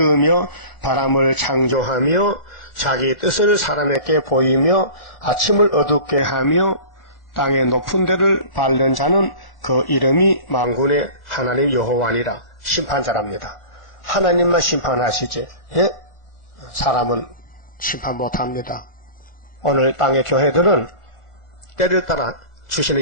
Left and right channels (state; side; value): late; right; 1.4 ms